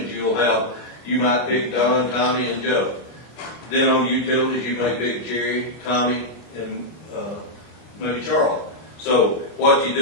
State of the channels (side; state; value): right; late; 25 ms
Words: you might pick Don, Tommy, and Joe. Then on utilities, you may pick Jerry, Tommy, and maybe Charles. So what you